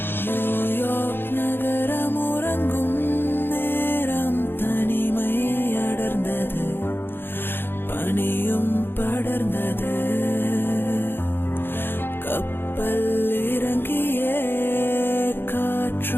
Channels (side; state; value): right; late; 0.10 ms